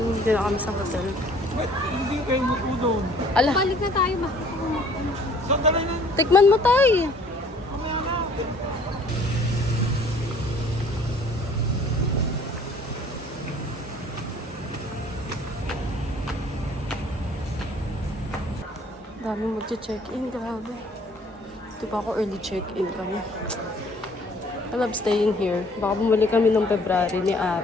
Hindi na kami sa hotel. Hindi kayo mupo doon. Ala, Balik na tayo ba? Sandali na. tikman mo tayo. Dami mag-check-in, grabe. Ito pa ako early check-in kami. I love staying here. Baka bumalik kami noong February ni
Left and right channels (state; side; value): normal; both; correlation 0.56